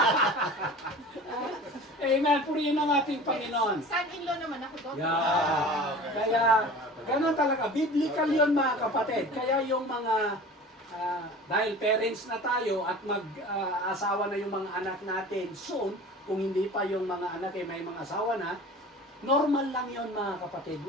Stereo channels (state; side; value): normal; both; correlation 0.39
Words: Amen. Purihin ang ating Panginoon. Son-in-law naman ako doon. Kaya, ganun talaga. Biblical yun mga kapatid. Kaya yung mga, dahil parents na tayo at mag-asawa na yung mga anak natin soon, kung hindi pa yung mga anak may mga asawa na, normal lang yun mga kapatid.